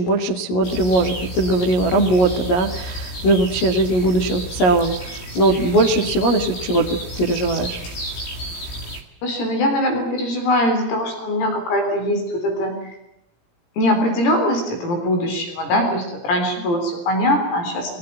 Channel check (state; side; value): late; right; 17 ms